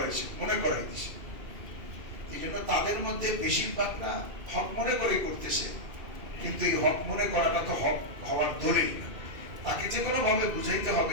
মনে করাই দিয়েছে। এই জন্য তাদের মধ্যে বেশিরভাগরা হক মনে করে করতেছে, কিন্তু এই হক মনে করাটা তো হক হওয়ার দলিল না। তাকে যে কোনো ভাবে বুঝাইতে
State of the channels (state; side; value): late; left; 2.4 ms